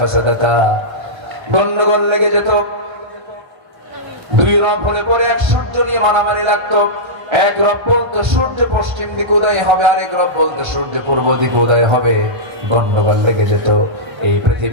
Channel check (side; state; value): left; late; 1.3 ms